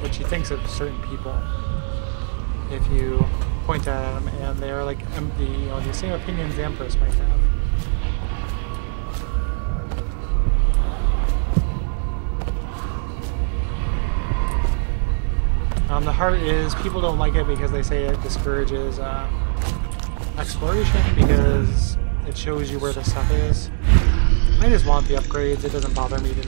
she thinks of certain people if you point at them, and they are like the same opinions the Empress might have. The heart is, people don't like it because they say it discourages exploration because it shows you where the stuff is. I just want the upgrades. It doesn't bother me to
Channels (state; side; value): silent; left; 65 dB below the other